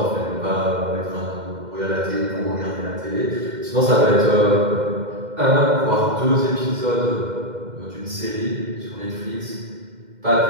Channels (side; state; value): left; late; 2.1 ms